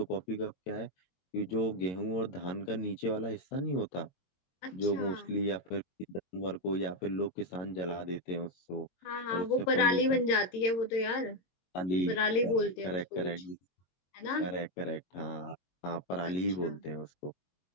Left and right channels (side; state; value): right; late; 22 ms